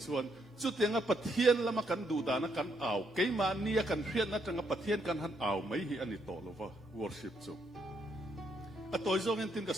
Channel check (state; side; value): normal; both; correlation 0.75